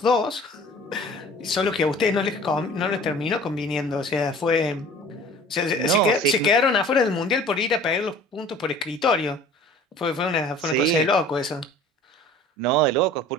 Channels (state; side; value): normal; both; correlation 0.46